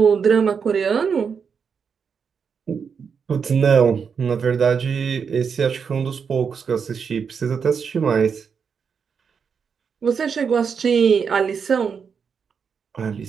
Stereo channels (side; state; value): left; quieter; 6.3 dB